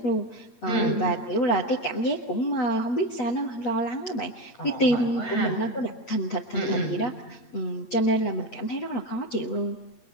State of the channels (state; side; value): late; right; 8.5 ms